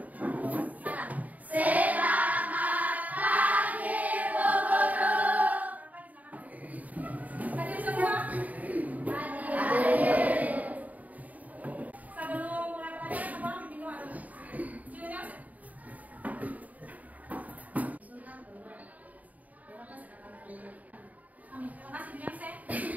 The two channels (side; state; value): left; late; 0.074 ms